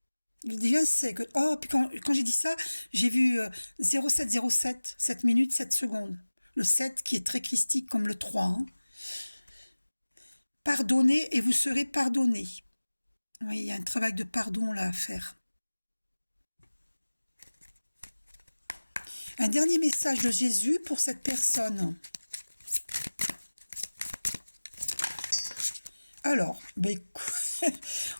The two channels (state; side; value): inverted; both; correlation -1.00